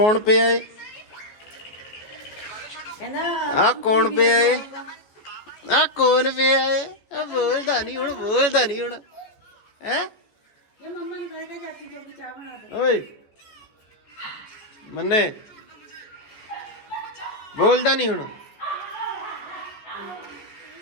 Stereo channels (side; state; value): right; late; 14 ms